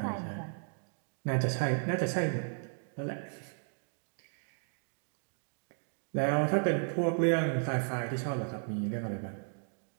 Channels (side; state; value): left; silent; 55 dB below the other